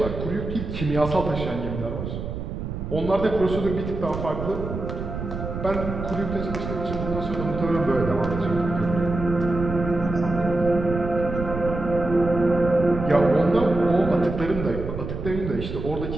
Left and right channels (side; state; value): right; noise; rumble, 6 dB below the sound